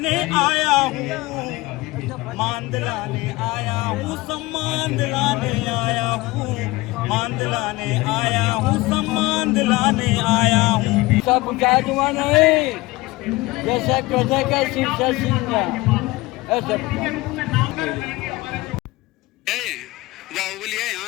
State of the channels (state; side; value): quieter; right; 20.7 dB